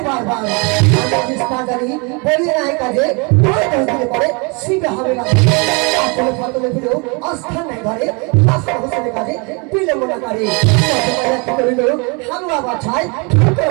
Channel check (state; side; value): quieter; left; 31.6 dB